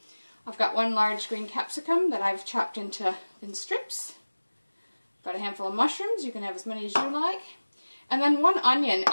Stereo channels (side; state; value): both; inverted; correlation -1.00